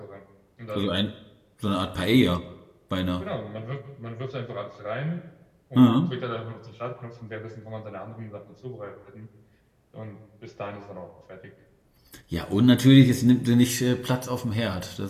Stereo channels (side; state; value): both; identical; correlation 1.00